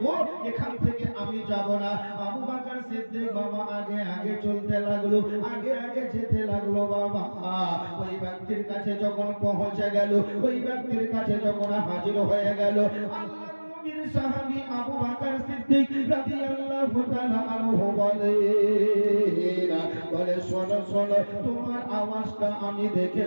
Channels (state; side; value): inverted; both; correlation -1.00